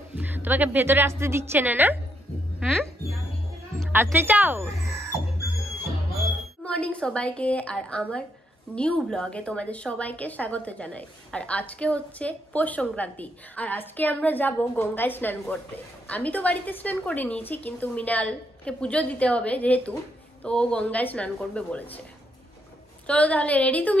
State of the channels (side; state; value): both; normal; correlation 0.77